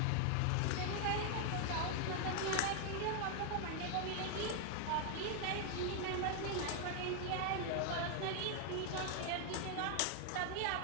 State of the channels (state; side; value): different; both; correlation 0.00